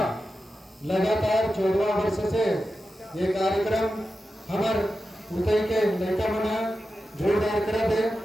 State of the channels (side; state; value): both; normal; correlation 0.91